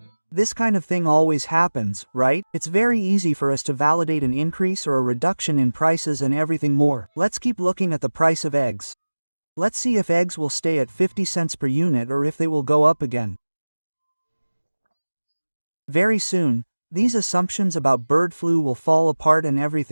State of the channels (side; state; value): both; inverted; correlation -1.00